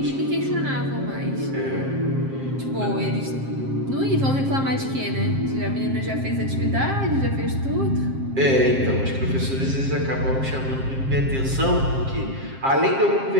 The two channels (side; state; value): left; late; 7.5 ms